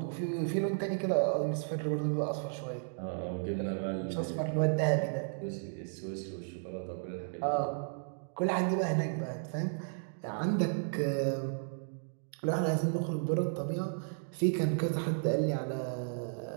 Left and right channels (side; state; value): left; silent; digital silence